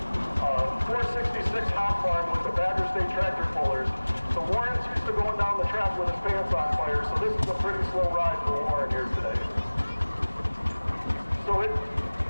466 hot farm with the Badger State tractor pullers. So Warren's used to going down the track with his pants on fire, so this is a pretty slow ride for Warren here today. So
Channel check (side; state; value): both; inverted; correlation -1.00